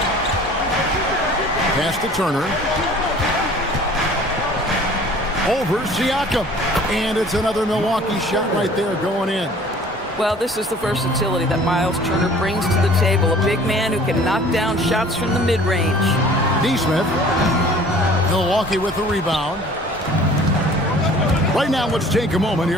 Pass to Turner. Over Siakam. And it's another Milwaukee shot right there going in. Well, this is the versatility that Miles Turner brings to the table. A big man who can knock down shots from the mid-range. Neesmith. Milwaukee with the rebound. Right now, let's take a moment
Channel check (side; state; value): both; normal; correlation 0.49